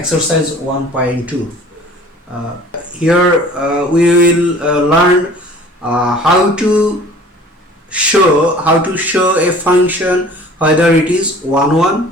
1.2. Here we will learn how to show a function whether it is 1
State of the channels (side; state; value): both; normal; correlation 0.48